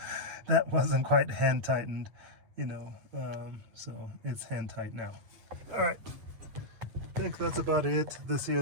that wasn't quite hand tightened, you know, so it's hand tight now. All right, I think that's about it. This here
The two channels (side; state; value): left; late; 9.1 ms